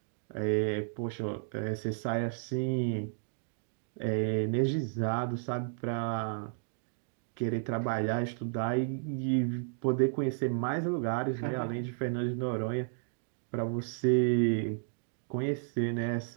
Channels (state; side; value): silent; left; digital silence